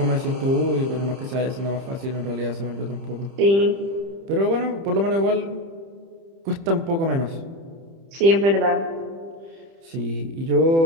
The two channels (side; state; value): left; late; 30 ms